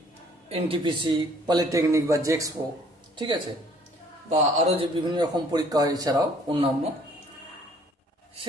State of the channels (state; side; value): normal; both; correlation 0.59